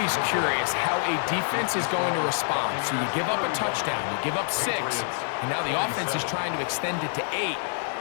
curious how a defense is going to respond. So you give up a touchdown, you give up 6, and now the offense is trying to extend it to 8.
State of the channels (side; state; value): right; silent; 61 dB below the other